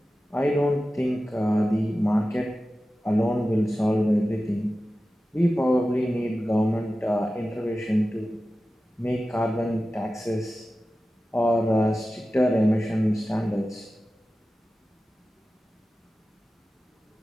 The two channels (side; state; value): both; normal; correlation 0.95